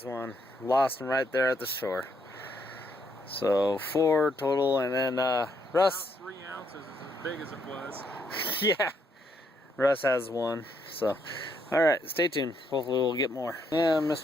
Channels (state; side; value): normal; both; correlation 0.74